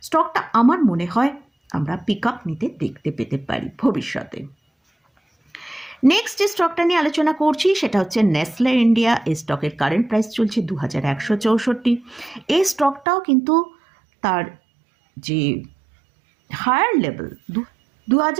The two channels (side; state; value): left; drops out; at 13.1 s